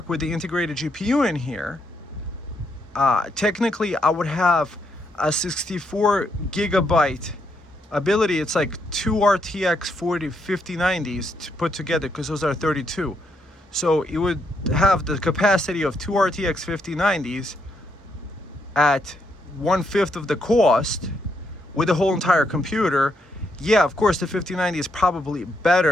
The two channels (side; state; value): both; normal; correlation 0.77